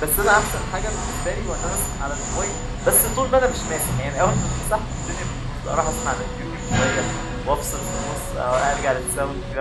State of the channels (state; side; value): identical; both; correlation 1.00